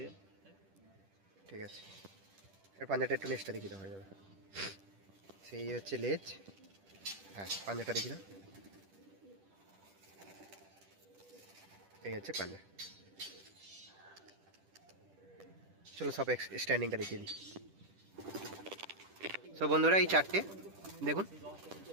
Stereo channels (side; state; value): left; late; 10 ms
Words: ঠিক আছে, এর পাঞ্জাটা একটু নেক্সটটা দেখিয়ে দেওয়া হয়ে যাবে। সেই হচ্ছে লেজ, হ্যাঁ পাঞ্জাটা দেখি দাও। এই হচ্ছে পাঞ্জা। চলো সব স্ট্যান্ডিংটা দেখিয়ে দিই। সব বন্ধুরা এই চারটে দেখুন,